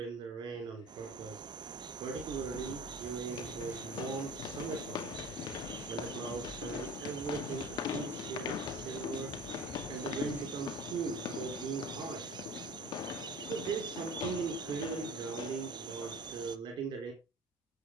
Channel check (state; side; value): normal; both; correlation 0.39